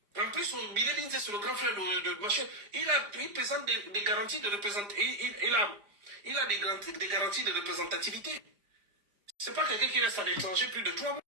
En plus, Bilé Binze, c'est le grand frère de Machin. Il présente des garanties de représentation. Il a des garanties de représentativité. C'est pas quelqu'un qui reste à l'étranger plus de 3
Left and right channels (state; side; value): late; left; 4.9 ms